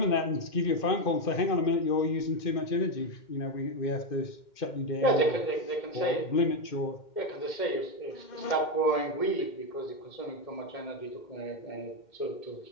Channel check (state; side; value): late; right; 2.1 ms